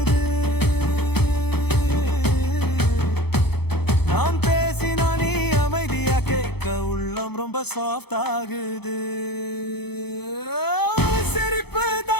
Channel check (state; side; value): late; right; 0.97 ms